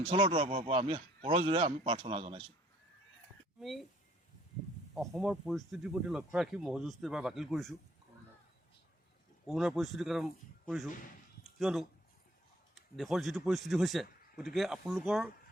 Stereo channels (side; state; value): both; normal; correlation 0.61